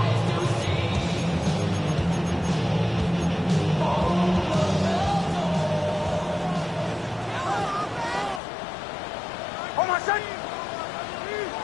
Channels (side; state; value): right; drops out; at 8.4 s